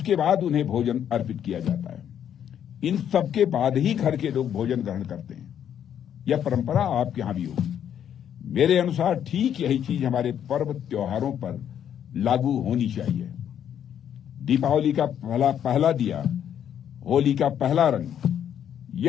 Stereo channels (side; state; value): right; quieter; 9.4 dB